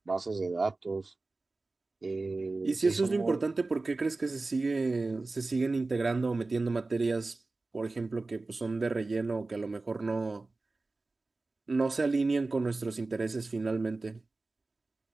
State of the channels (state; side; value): quieter; left; 3.4 dB